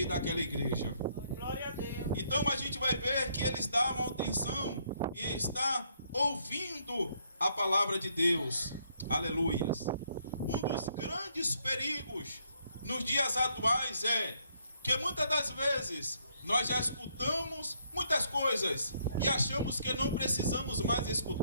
daquela igreja. Glória a Deus. Então a gente vai ver que eles davam atenção e está ouvindo a palavra de Deus. Aleluias. Um dos grandes perigos nos dias atuais é que muitas das vezes nós já escutamos muitas coisas e achamos que não precisamos mais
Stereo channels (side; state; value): both; inverted; correlation -0.71